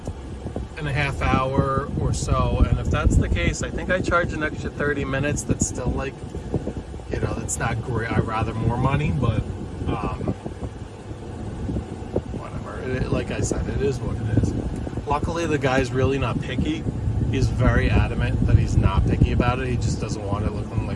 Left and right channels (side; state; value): both; identical; correlation 1.00